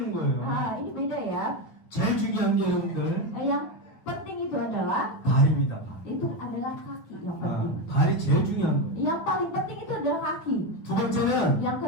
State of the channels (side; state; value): right; late; 9.1 ms